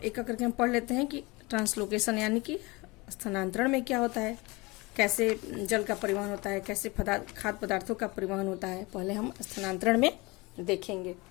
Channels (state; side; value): quieter; right; 24.6 dB